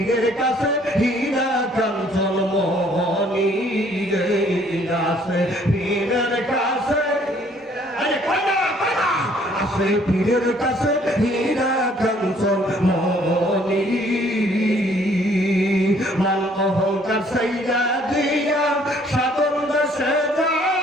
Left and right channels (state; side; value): normal; both; correlation 0.61